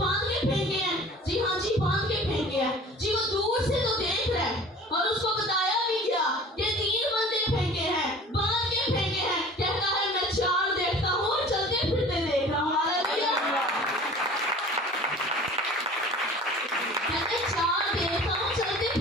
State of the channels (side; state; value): both; normal; correlation 0.44